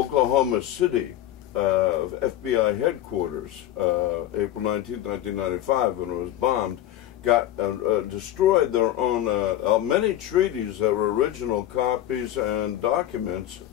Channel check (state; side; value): quieter; right; 12.9 dB